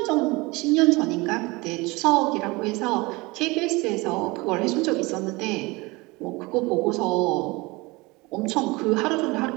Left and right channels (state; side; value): quieter; left; 23.8 dB